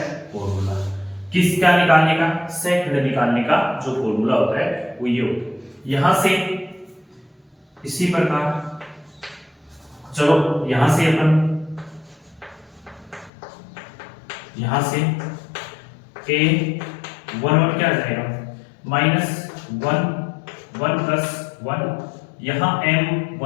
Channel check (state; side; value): drops out; right; at 13.3 s